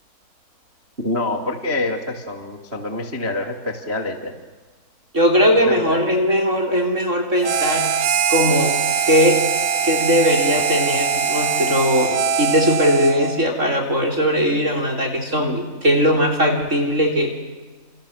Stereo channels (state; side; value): late; left; 4.2 ms